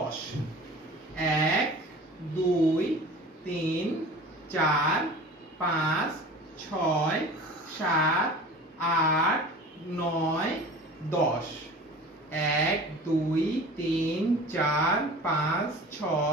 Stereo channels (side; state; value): both; normal; correlation 0.40